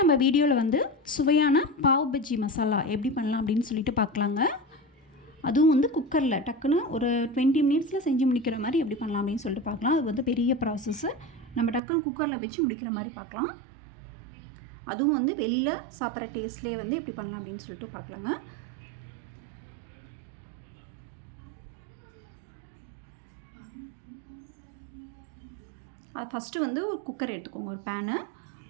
வீடியோவில் வந்து சுவையான பாவ் பஜ்ஜி மசாலா எப்படி பண்ணலாம் அப்படின்னு சொல்லிட்டு பார்க்கலாங்க. அதுவும் வந்து குக்கரில் டக்குன்னு ஒரு 20 மினிட்ஸில் செஞ்சு முடிக்கிற மாதிரி எப்படி பண்ணலாம் அப்படின்னு சொல்லிட்டு பார்க்கலாம். அது வந்து பெரிய ப்ராசஸ்ஸு. நம்ம டக்குன்னு குக்கரில் வச்சு முடிக்கிற மாதிரி பார்க்கலாம். அதுவும் வந்து வெளியில் சாப்பிட்ற டேஸ்ட்லேயே வந்து எப்படி பண்ணலாம் அப்படின்னு சொல்லிட்டு பார்க்கலாங்க. அது ஃபஸ்ட்டு வந்து ஒரு குக்கர் எடுத்துக்கோங்க, ஒரு பேனு.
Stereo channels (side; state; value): left; drops out; at 11.8 s